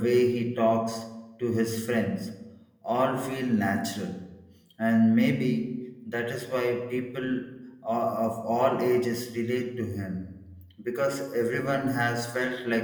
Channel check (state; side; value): identical; both; correlation 1.00